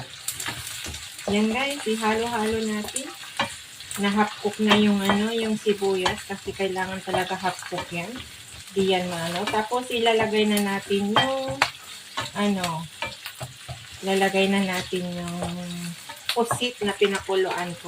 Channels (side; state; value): both; identical; correlation 1.00